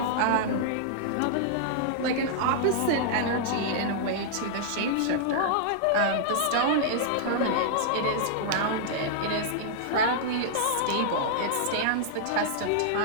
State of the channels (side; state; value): both; different; correlation -0.01